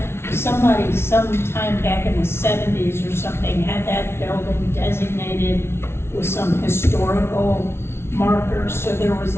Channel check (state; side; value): late; right; 0.12 ms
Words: somebody sometime back in the 70s or something had that building designated with some historical markers, so there was